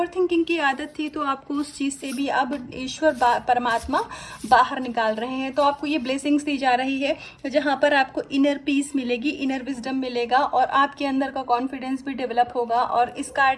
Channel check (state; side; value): identical; both; correlation 1.00